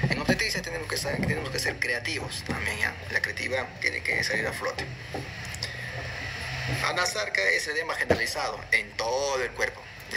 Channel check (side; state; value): both; identical; correlation 1.00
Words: En obstetricia tenemos que ser creativos también, ¿ya? La creatividad tiene que salir a flote. Anasarca es edema generalizado en todo el cuerpo.